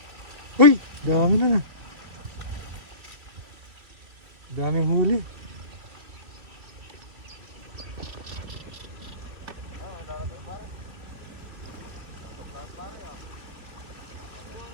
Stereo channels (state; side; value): late; left; 2.9 ms